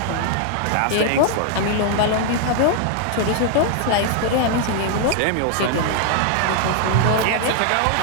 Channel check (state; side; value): different; both; correlation 0.00